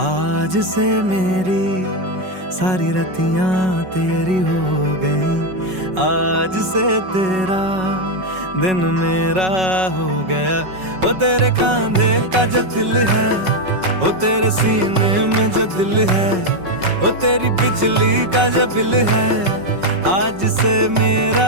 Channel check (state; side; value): late; left; 5.4 ms